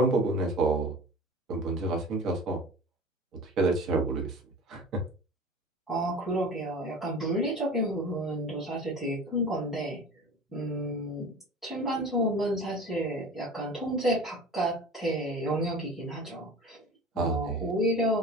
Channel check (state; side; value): normal; both; correlation 0.38